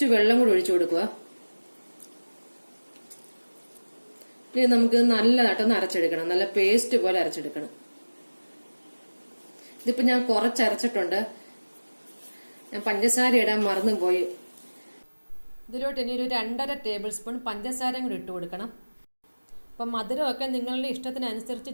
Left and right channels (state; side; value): inverted; both; correlation -1.00